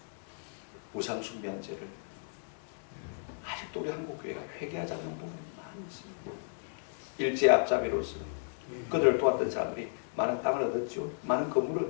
우상숭배한 죄를 아직도 우리 한국교회가 회개하지 않는 부분이 많이 있습니다. 일제 앞잡이로서 그들을 도왔던 사람들이 많은 땅을 얻었죠. 많은 건물을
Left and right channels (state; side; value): silent; right; 55 dB below the other